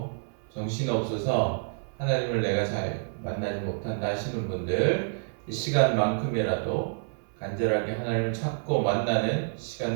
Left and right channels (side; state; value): left; silent; 59 dB below the other